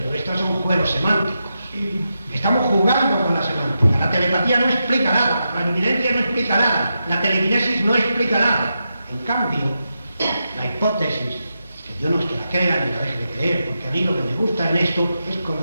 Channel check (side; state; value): both; inverted; correlation -0.87